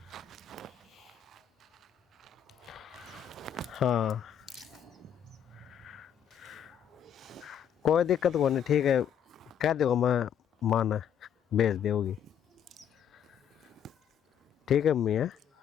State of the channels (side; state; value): right; quieter; 8.9 dB